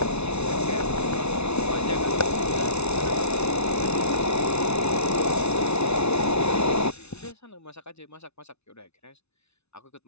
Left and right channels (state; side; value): late; right; 0.81 ms